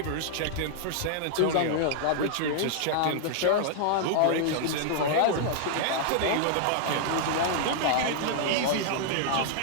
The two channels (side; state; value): both; different; correlation -0.01